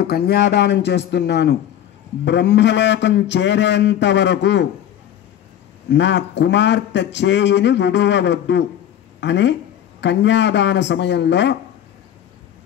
కన్యాదానం చేస్తున్నాను. బ్రహ్మలోకం చేరేంత వరకు నా కుమార్తె చేయిని విడువవద్దు అని కన్యాదాన సమయంలో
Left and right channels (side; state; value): right; quieter; 10.5 dB